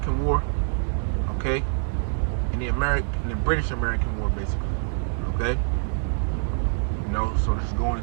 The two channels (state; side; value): silent; left; digital silence